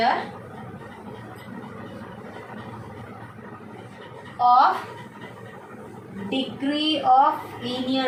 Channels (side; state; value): both; identical; correlation 1.00